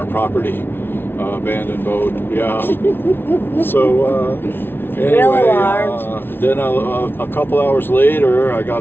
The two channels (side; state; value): right; late; 0.11 ms